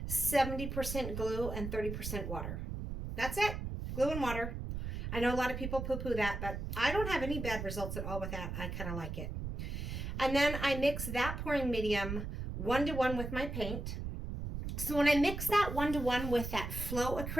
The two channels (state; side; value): noise; right; rumble, 5 dB below the sound